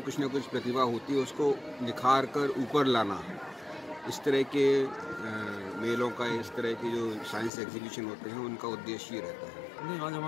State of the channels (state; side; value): drops out; right; at 7.5 s